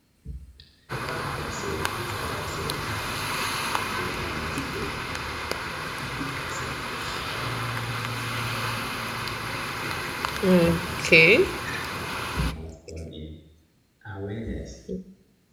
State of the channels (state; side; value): identical; both; correlation 1.00